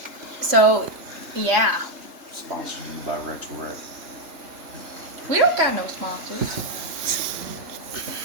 So, yeah. Sponsored by Rachel Red. We don't got no sponsors.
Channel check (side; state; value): left; late; 3.0 ms